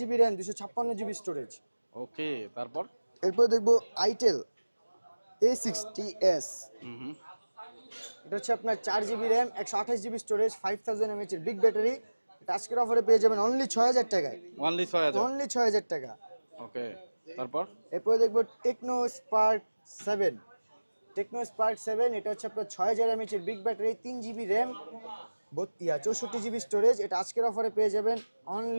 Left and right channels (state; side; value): inverted; both; correlation -1.00